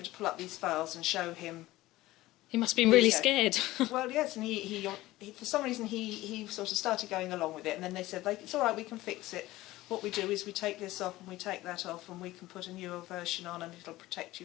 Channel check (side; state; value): right; quieter; 17.4 dB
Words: to pull up these files and show him. He must have been really scared. Well, yes, and he for some reason he sort of started going along with it, and then they said, it's all right, we can fix it. What we do is we take this off and we take that off, and we can put a newer version on, and it'll protect